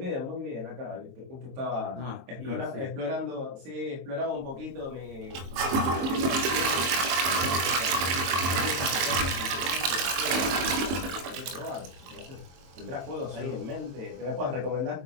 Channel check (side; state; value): left; late; 22 ms